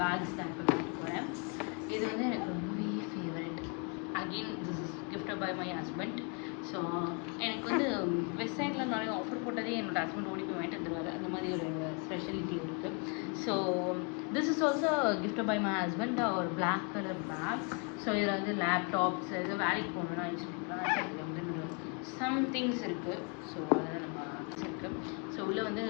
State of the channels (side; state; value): right; quieter; 35.1 dB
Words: பேக்ஸ் தான் இப்போ வாங்க போகிறேன். இது வந்து எனக்கு ரொம்பவே favourite. Again this is gifted by my husband. So எனக்கு வந்து வெப்சைட்டில் நிறைய ஆஃபர் போட்டதே என்னோடய ஹஸ்பண்ட் ஓடி போய் வாங்கிட்டு வந்துடுவாரு. அந்த மாதிரி ஒரு ஸ்பெஷாலிட்டி இருக்குது. So this is also gifted by my husband, ஒரு பிளாக் கலர் பேக். ஸோ இதில் வந்து லேப்டாப்ஸ் இது வேலைக்கு போகணுன்னா இதில் வந்து சம் திங்ஸ் இருக்குது. ஸோ அதை நம்ம வச்சுருக்கேன். ஸோ உள்ளே வந்து